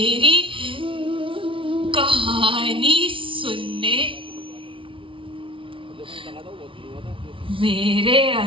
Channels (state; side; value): late; left; 0.25 ms